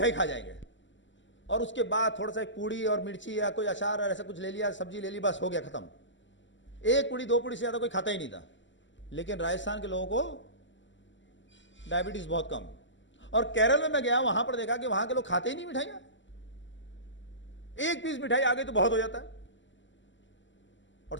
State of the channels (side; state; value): right; late; 0.54 ms